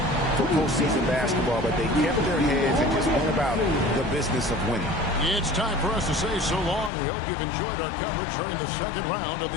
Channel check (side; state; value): right; drops out; at 6.9 s